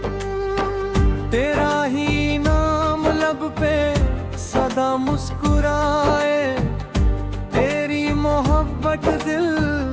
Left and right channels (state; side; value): identical; both; correlation 1.00